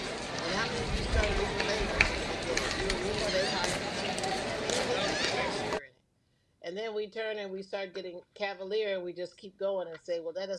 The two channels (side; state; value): both; identical; correlation 1.00